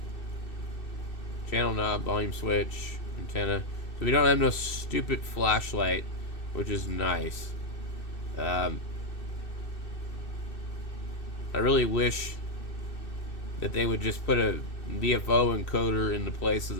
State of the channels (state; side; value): late; right; 2.6 ms